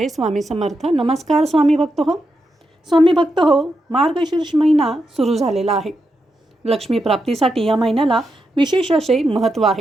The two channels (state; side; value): normal; both; correlation 0.85